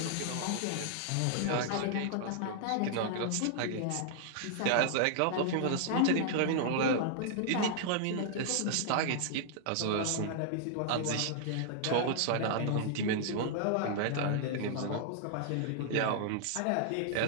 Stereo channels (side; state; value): both; different; correlation -0.01